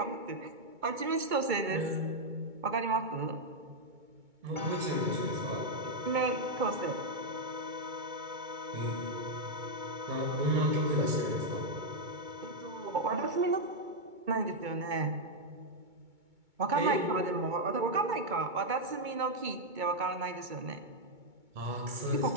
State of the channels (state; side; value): late; left; 2.2 ms